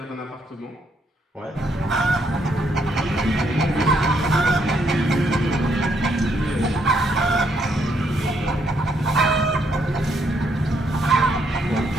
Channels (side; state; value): both; normal; correlation 0.73